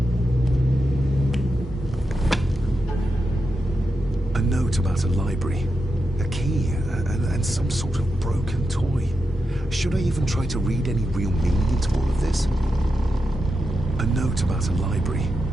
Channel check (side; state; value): both; normal; correlation 0.88